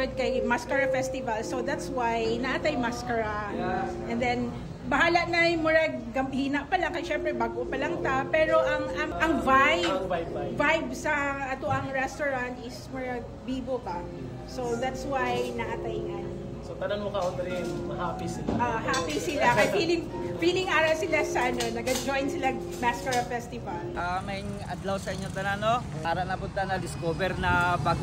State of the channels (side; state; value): both; identical; correlation 1.00